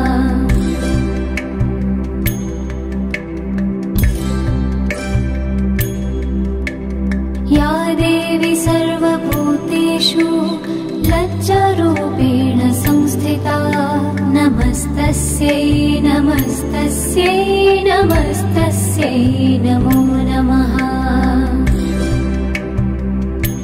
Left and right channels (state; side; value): identical; both; correlation 1.00